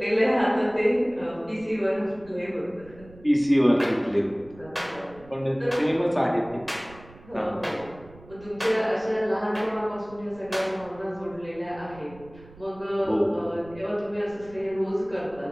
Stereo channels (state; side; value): noise; right; rumble, 21 dB below the sound